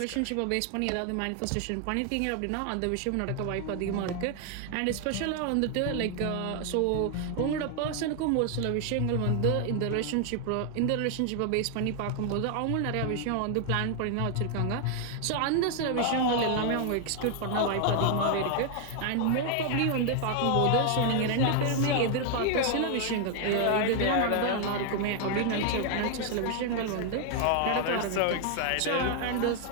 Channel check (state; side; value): different; both; correlation 0.00